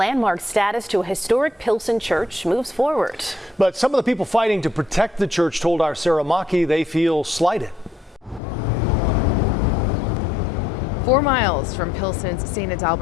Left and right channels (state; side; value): drops out; right; at 8.4 s